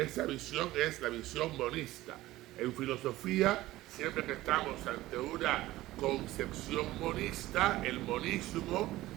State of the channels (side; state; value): left; quieter; 16.7 dB